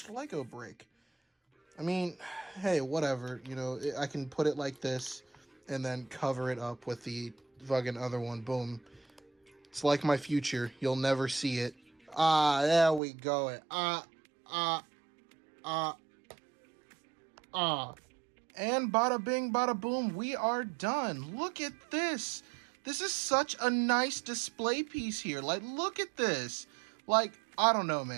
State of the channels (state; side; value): drops out; left; at 13.0 s